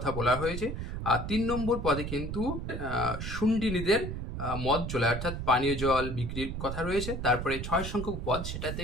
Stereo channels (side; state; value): right; noise; rumble, 5 dB below the sound